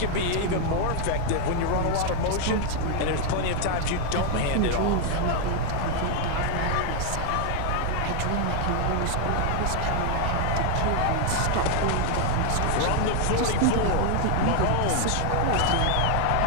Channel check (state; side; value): different; both; correlation 0.00